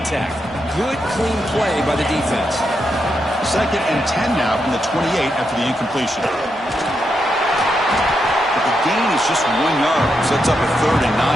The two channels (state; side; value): normal; both; correlation 0.83